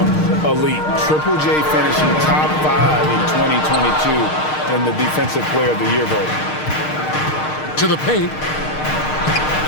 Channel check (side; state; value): right; late; 6.5 ms